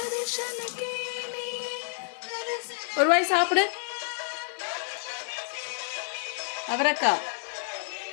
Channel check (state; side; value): silent; right; digital silence